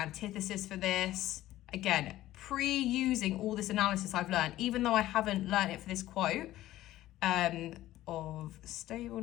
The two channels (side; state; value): right; quieter; 15.0 dB